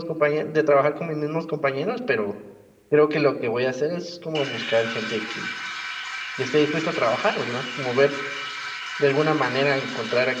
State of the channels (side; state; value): both; identical; correlation 1.00